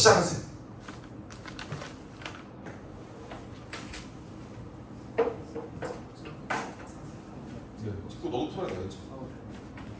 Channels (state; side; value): identical; both; correlation 1.00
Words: 찍고 너도 풀어야 되겠지.